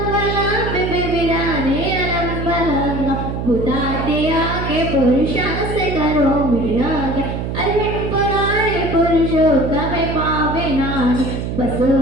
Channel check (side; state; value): right; noise; hum, 4 dB below the sound